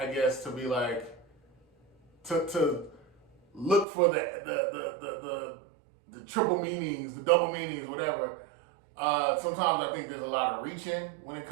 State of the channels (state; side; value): drops out; left; at 3.9 s